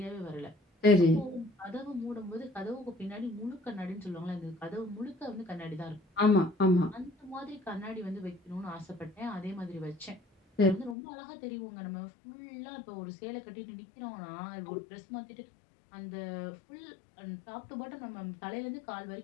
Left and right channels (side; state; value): right; drops out; at 11.0 s